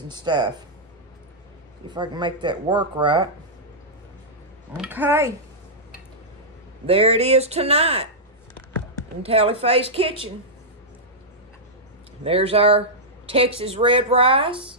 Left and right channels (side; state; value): both; normal; correlation -0.10